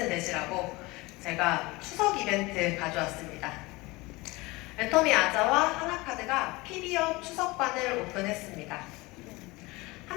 되시라고 제가 추석 이벤트 가져왔습니다. 애터미 아자와 하나카드가 PB업 추석반을 오픈했습니다.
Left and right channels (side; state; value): right; quieter; 22.6 dB